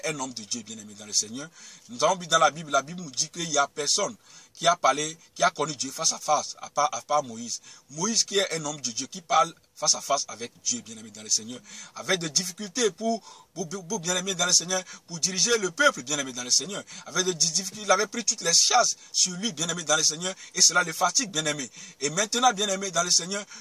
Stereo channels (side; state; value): both; identical; correlation 1.00